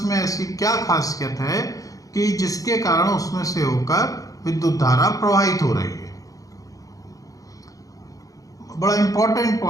में ऐसी क्या खासियत है कि जिसके कारण उसमें से होकर विद्युत धारा प्रवाहित हो रही है। बड़ा इंपॉर्टेंट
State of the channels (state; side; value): late; right; 0.17 ms